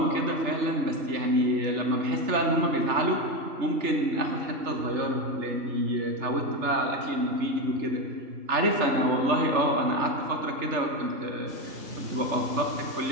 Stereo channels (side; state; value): left; late; 3.3 ms